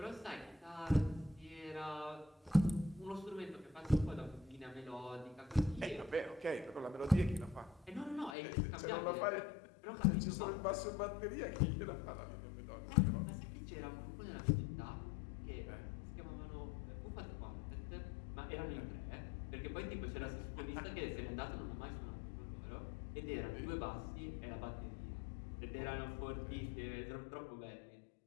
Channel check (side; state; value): right; drops out; at 8.3 s